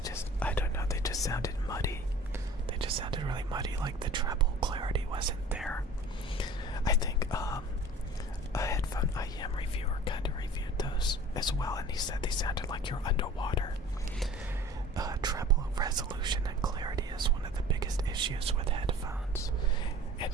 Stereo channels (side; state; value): both; normal; correlation 0.44